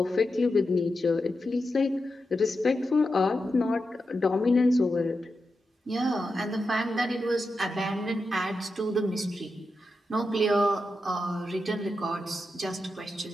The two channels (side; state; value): both; normal; correlation 0.89